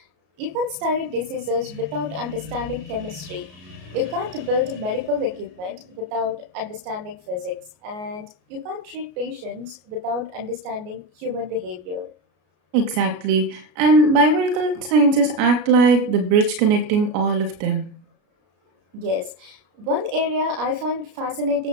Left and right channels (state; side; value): late; left; 33 ms